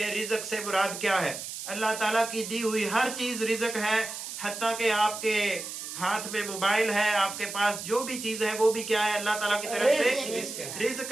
رزق سے مراد کیا ہے۔ اللہ تعالیٰ کی دی ہوئی ہر چیز رزق ہے، حتیٰ کہ آپ کے ہاتھ میں موبائل ہے، آپ کے پاس جو بھی چیز ہے وہ بھی کیا ہے، اللہ تعالیٰ کی طرف سے رزق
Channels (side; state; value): right; noise; hiss, 8 dB below the sound